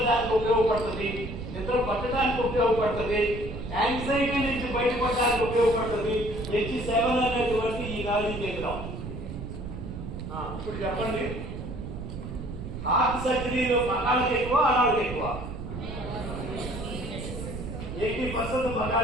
ఉపయోగపడుతుంది, నిద్ర పట్టడానికి ఉపయోగపడుతుంది, యాంగ్జైటీ నుంచి బయటపడడానికి ఉపయోగపడుతుంది H7 అనేటువంటి ఈ నాడీ కేంద్రం. ఇప్పుడు చెప్పండి, హార్ట్ సర్జరీలో మగాళ్ళకి ఎక్కువ ఆడాళ్ళకి ఎక్కువ? 80%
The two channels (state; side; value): noise; right; rumble, 8 dB below the sound